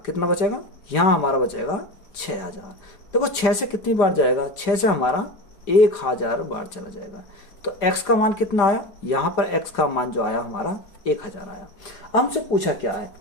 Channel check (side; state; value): right; late; 5.0 ms